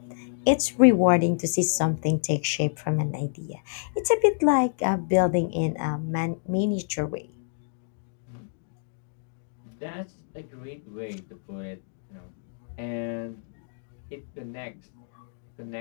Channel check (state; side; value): silent; right; digital silence